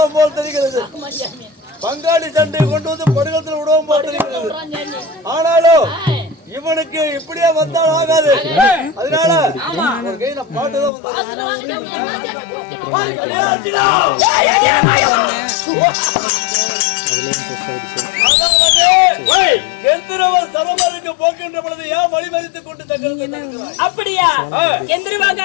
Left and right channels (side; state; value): right; drops out; at 10.9 s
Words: போல் தெரிகிறது. ஆமா ஜாமி. பங்காளி சண்டை கொண்டு வந்து படுகத்தில் விடுவோம் போல் தெரிகிறது. சொல்றான் ஜாமி. ஆனாலும் ஆ. இவனுக்கு இப்படியே வந்தால் ஆகாது. அதனால ஒரு கையில பாட்டுதான் வந்தாரு. அதுல வாங்க ஜாமி. என்ன ஜாமி போக்கணும்? ஏ அர்ஜுனா! அதாவது, கந்தர்வன் சரமருக்கு போக்கின்ற பொழுது ஏன் வழிமறித்துக் கொண்டு தங்களுக்கு தடுக்கிறாய்? அப்படியா?